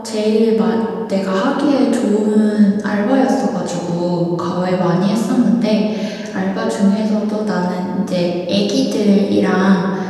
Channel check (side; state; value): both; identical; correlation 1.00